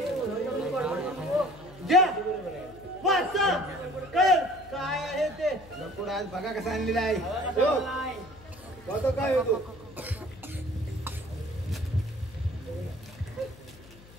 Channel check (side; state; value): left; noise; hum, 21 dB below the sound